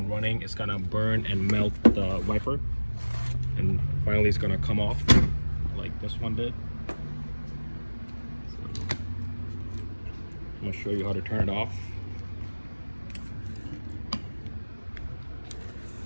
running, it's going to burn and melt the wiper. And finally it's going to come off, like this one did. So I'm going to show you how to turn it off.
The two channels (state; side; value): inverted; both; correlation -1.00